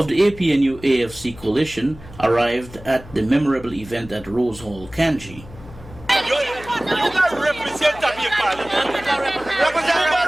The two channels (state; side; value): noise; left; hum, 18 dB below the sound